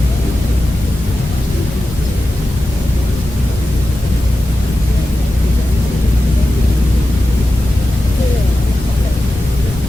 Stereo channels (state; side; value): normal; both; correlation 0.93